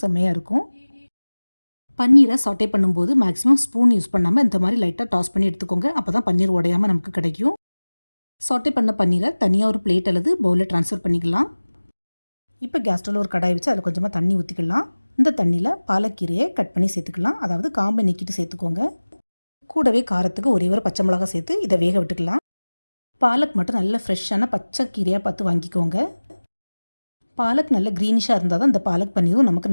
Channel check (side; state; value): both; inverted; correlation -1.00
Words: செம்மையாக இருக்கும். பன்னீரை சாட்டே பண்ணும்போது மேக்ஸிமம் ஸ்பூன் யூஸ் பண்ணாமல் இந்த மாதிரி லைட்டாக டாஸ் பண்ணி எடுத்துக்கோங்க. அப்போ தான் பன்னீர் உடையாமல் நமக்கு கிடைக்கும். சாட்டே பண்ண பன்னீரை தனியாக ஒரு பிளேட் அல்லது பவுலில் ட்ரான்ஸ்ஃபர் பண்ணிக்கலாம். இப்போ கேஸ் ஸ்டவ்வில் ஒரு கடாய் வச்சு அதில் கொஞ்சமாக தண்ணி ஊற்றிக்கலாம். இந்த தண்ணியில் பாலக்கீரையை கட் பண்ணி சேர்த்துக்கலாம். அதாவது காம்பை நீக்கிட்டு சேர்த்துக்கோங்க. கூடவே காரத்துக்கு ஒரே ஒரு பச்சை மிளகா சேர்த்து இதை வேக விட்டுக்கலாம். பாலக் மட்டும் நல்ல ஃப்ரெஷ்ஷான பச்சை கீரையாக பார்த்து வாங்கிக்கோங்க. பாலக் நல்ல க்ரீனிஷாக இருந்தால் தான் இந்த பாலக் பன்னீரும் நமக்கு